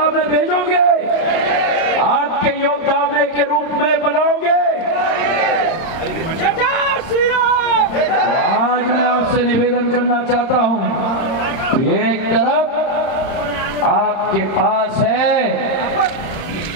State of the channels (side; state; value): right; late; 30 ms